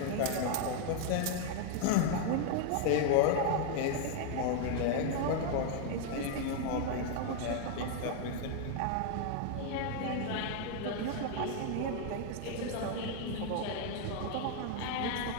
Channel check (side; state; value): both; different; correlation 0.00